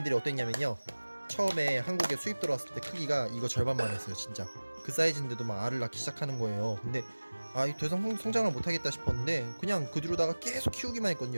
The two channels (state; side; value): inverted; both; correlation -1.00